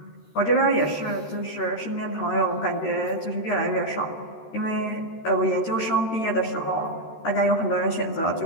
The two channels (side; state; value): right; late; 13 ms